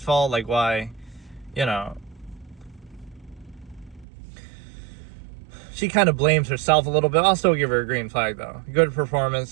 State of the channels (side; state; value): left; drops out; at 4.0 s